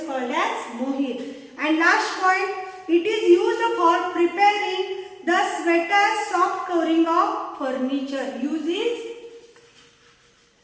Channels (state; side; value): identical; both; correlation 1.00